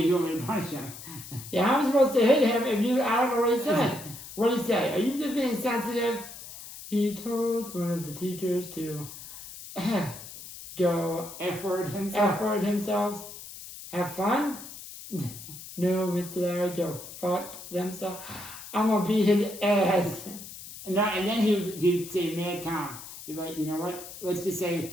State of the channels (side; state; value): left; noise; hiss, 13 dB below the sound